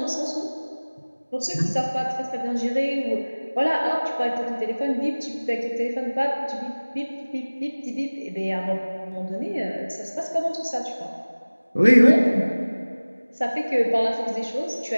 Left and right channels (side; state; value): both; inverted; correlation -1.00